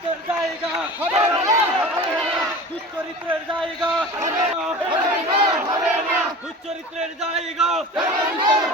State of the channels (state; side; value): normal; both; correlation 0.36